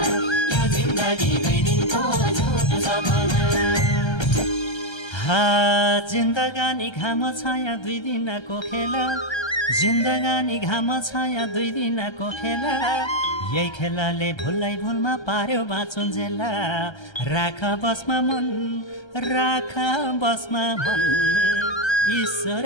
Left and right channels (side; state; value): right; late; 1.3 ms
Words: यो जिन्दगी 2 दिनको झुटो सपना जिन्दगानी घाम छाया 2 दिनको खेला जिन्दगानी घाम छाया 2 दिनको खेला यही खेलाले भुललाई भुलमा पार्यो बाँचुन्जेला राख बसमा मन राख बसमा मन ईश्वर